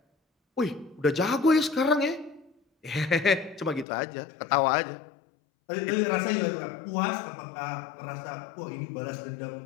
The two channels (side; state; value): right; drops out; at 3.9 s